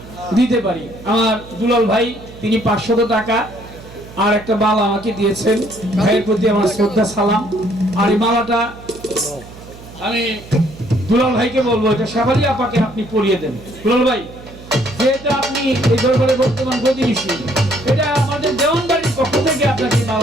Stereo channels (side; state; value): right; noise; hum, 18 dB below the sound